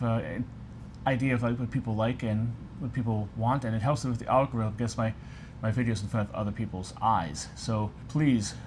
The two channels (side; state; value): both; identical; correlation 1.00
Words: an idea of what people like and what people want, and it helps with the algorithm, gets my videos in front of other people's eyes. So please